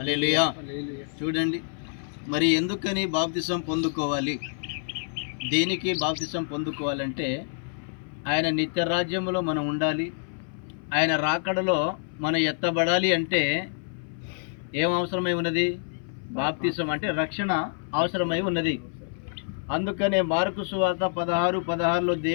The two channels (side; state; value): right; silent; 57 dB below the other